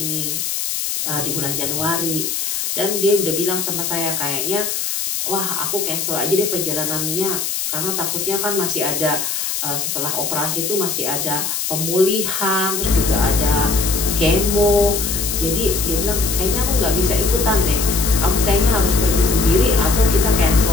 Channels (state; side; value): noise; left; hiss, 2 dB below the sound